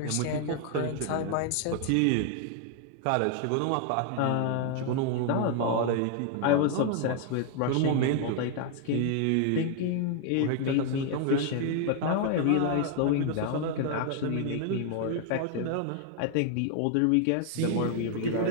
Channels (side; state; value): both; different; correlation 0.00